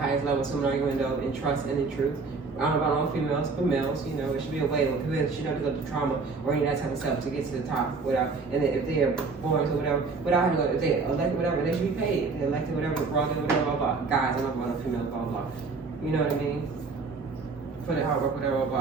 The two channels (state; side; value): quieter; left; 4.3 dB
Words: highest level, so I'm going to go in trust and in truth. I don't know about all females, but males, it should be a way when people should not go through trauma or any of that type of stuff to get to the top without, and then if they are born or whatever, without having to go, if they elected whatever, they should be paid. If they elected whatever, blah, blah, blah. Guys, I'm not about females, blah, blah. You know what I mean? For the hard work, whatever,